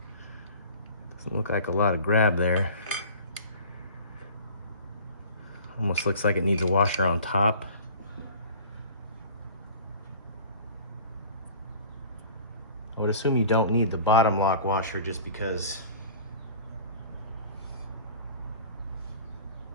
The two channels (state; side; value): inverted; both; correlation -0.44